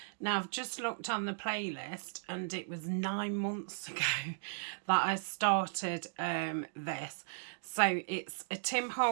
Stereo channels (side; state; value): left; silent; digital silence